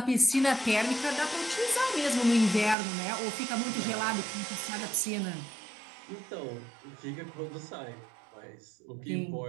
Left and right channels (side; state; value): left; drops out; at 2.8 s